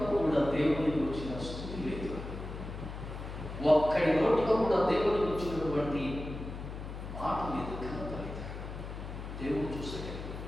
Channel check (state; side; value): noise; left; hum, 8 dB below the sound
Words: కూడా దేవునికి వచ్చిన స్తుతి లేదు. ఒక్కడి నోట్లో కూడా దేవునికి వచ్చినటువంటి మాట లేదు, ఘనత లేదు. దేవుడు చూసాడు.